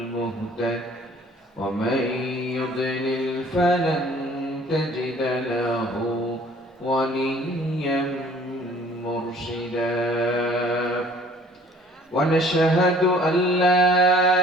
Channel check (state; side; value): normal; both; correlation 0.54